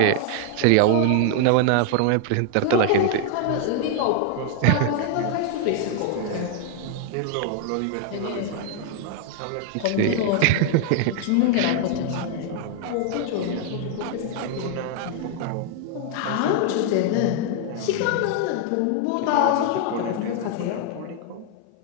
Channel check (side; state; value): both; different; correlation 0.00